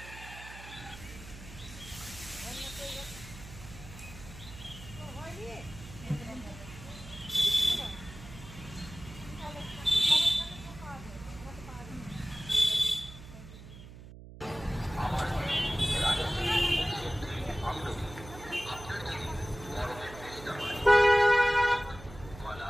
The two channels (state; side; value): noise; right; hum, 15 dB below the sound